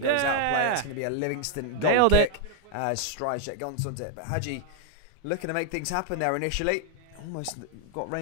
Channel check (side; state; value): both; different; correlation 0.00